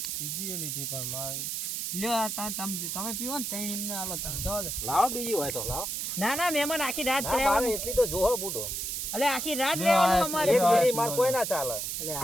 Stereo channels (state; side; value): noise; right; hiss, 3 dB below the sound